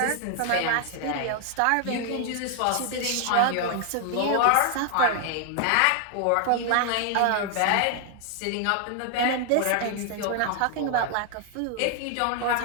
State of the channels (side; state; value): both; different; correlation 0.00